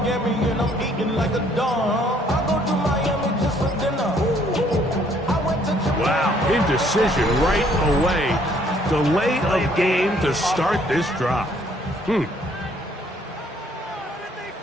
and I'm eating like a dawn. I go to Miami just for dinner. Wow, indecision right away. Delay of game to start this drive.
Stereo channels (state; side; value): normal; both; correlation 0.63